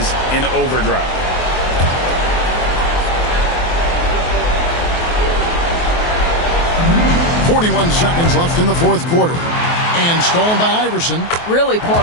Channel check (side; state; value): right; late; 23 ms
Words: in overdrive. 41 seconds left in the 4th quarter. And stolen by Iverson. Really poor